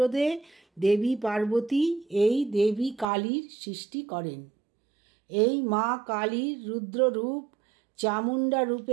দেবী পার্বতী এই দেবী কালীর সৃষ্টি করেন। এই মা কালীর রুদ্ররূপ চামুণ্ডা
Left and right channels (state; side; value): drops out; left; at 3.1 s